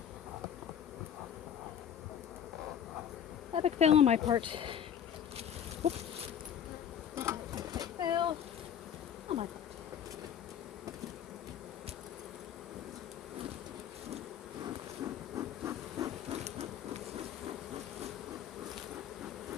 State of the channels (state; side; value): quieter; right; 9.0 dB